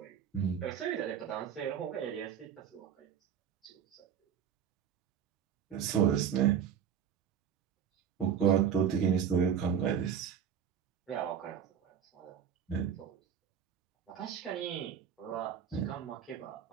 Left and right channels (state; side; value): quieter; left; 8.4 dB